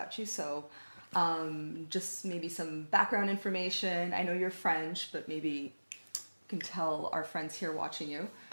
you. So, just maybe some background information. I know you're French, but maybe you can tell our friends here watching you.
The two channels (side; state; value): both; inverted; correlation -1.00